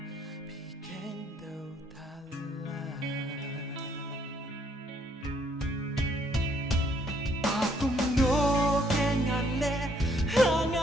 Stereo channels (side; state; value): both; normal; correlation 0.68